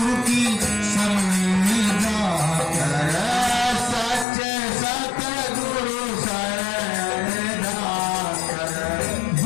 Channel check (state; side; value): drops out; right; at 4.2 s